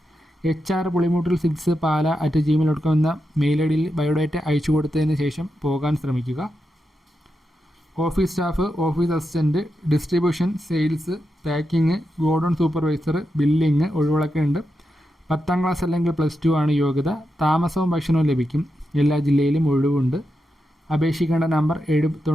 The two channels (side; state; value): both; normal; correlation 0.87